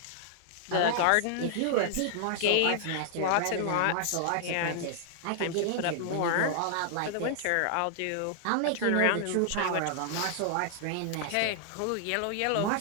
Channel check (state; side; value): different; both; correlation 0.00